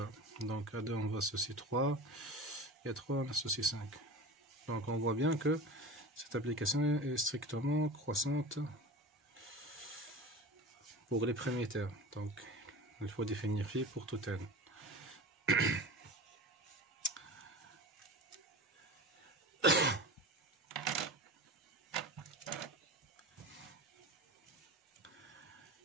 Donc à 2 on va associer 3 et à 3 on associe 5. Donc on voit bien que cette application est strictement croissante pour les premiers termes. Donc il faut définir phi pour tout n.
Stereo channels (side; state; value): both; normal; correlation 0.32